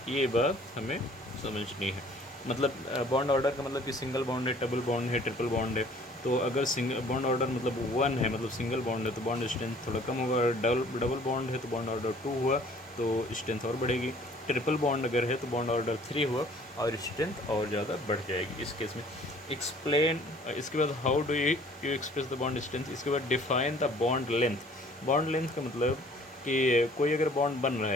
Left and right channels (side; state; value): both; normal; correlation 0.54